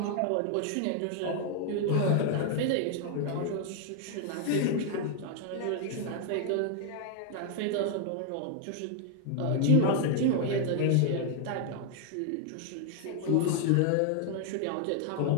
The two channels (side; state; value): both; different; correlation 0.00